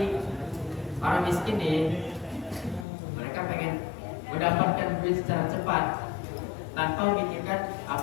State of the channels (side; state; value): right; drops out; at 2.9 s